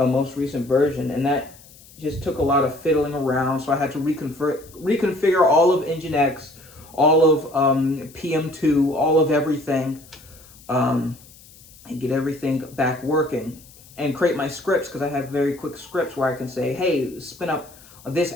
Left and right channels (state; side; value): noise; left; hiss, 23 dB below the sound